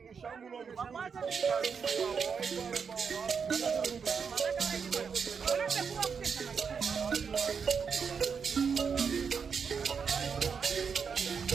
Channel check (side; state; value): left; quieter; 6.2 dB